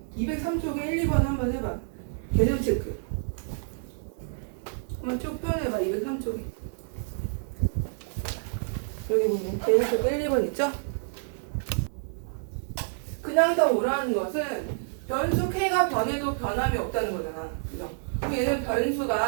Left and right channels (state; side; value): silent; left; digital silence